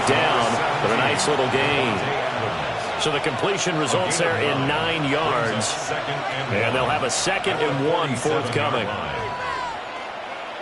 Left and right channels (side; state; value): both; identical; correlation 1.00